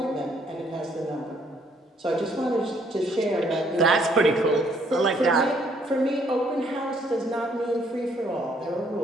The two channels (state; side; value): normal; both; correlation 0.66